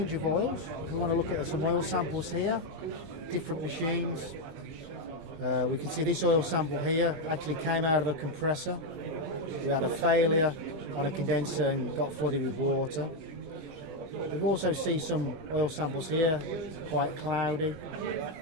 of oils. We want to look at some oil samples here, different machines. We can see this oil sample here actually came out of a compressor. We had a failure on a condenser and got flooded with water. We've also seen some oil samples here, quite cloudy,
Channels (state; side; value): late; left; 20 ms